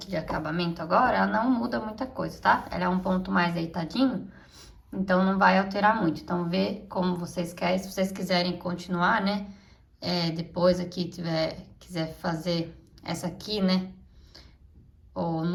de acabamento agora, ela não muda muita coisa, tá? Ela é um ponto mais deitadinho, então não vai alterar muito. Então, vê como vocês querem, se vocês quiserem continuar, né? Depois aqui quiser fazer essa aqui, né? Ou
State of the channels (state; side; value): identical; both; correlation 1.00